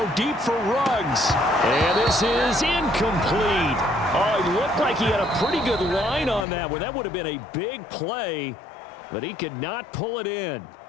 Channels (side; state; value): right; drops out; at 6.5 s